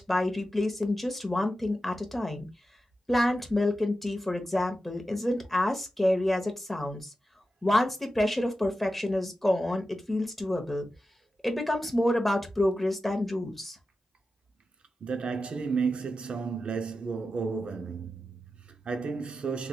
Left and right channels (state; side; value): normal; both; correlation 0.91